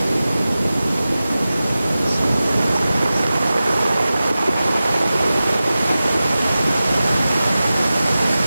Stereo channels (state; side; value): inverted; both; correlation -0.95